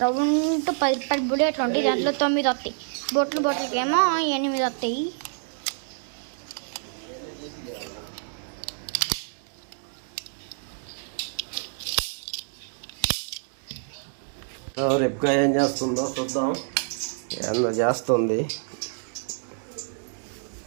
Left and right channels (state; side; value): silent; left; digital silence